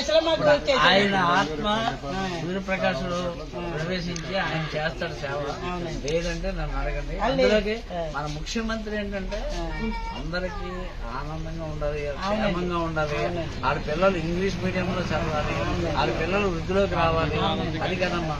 ఆయన ఆత్మ సూర్యప్రకాశుడు ప్రవేశించి ఆయన చేస్తాడు సేవ. లేదంటే నన్ను అడగండి. అందులోకి మన ముఖ్యమంత్రి ఏంటంటే అందరికి ఆనందంగా ఉండాలి, క్షేమంగా ఉండాలి. ఆడ పిల్లలు ఇంగ్లీష్ మీడియంలో చదవాలి, ఆడ పిల్లలు వృద్ధిలోకి రావాలి. అది కదమ్మా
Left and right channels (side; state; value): both; identical; correlation 1.00